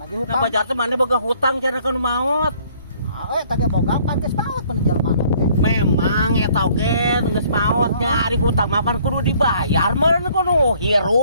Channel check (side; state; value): both; inverted; correlation -0.60